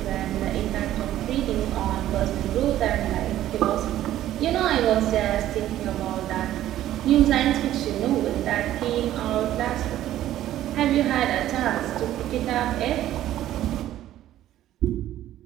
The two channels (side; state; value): left; quieter; 13.1 dB